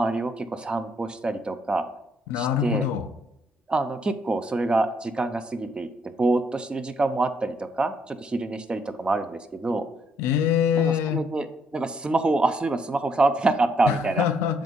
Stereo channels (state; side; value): normal; both; correlation 0.71